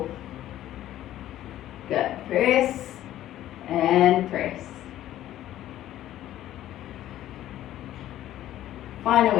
Good, press and press. Final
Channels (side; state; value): right; quieter; 13.1 dB